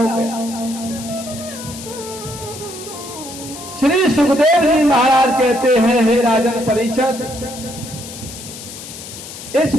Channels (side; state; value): left; noise; hiss, 12 dB below the sound